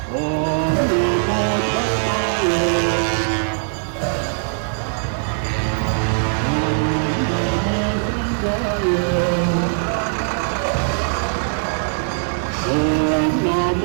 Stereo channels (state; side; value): silent; left; 62 dB below the other